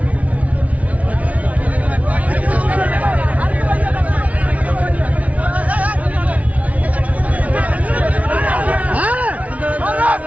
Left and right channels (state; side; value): late; left; 0.068 ms